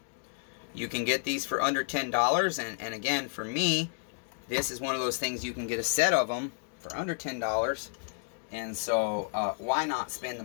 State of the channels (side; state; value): right; silent; digital silence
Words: You can get these for under $10. And again, for me, this is one of those things you can get a set of them for under $10. And so, why not spend the